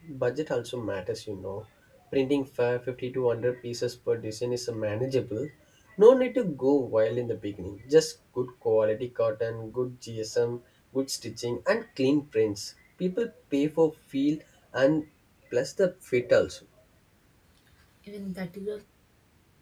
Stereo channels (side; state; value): both; identical; correlation 1.00